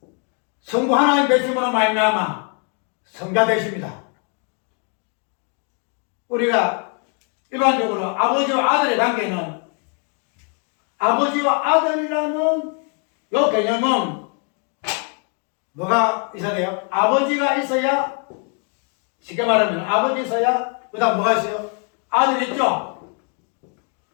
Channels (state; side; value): quieter; right; 40.0 dB